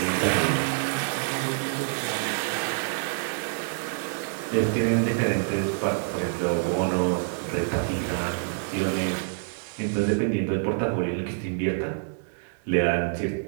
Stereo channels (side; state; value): left; silent; digital silence